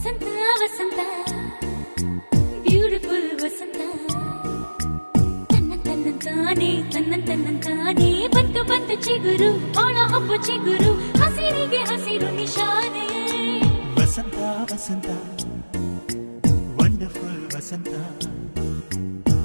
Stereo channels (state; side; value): inverted; both; correlation -1.00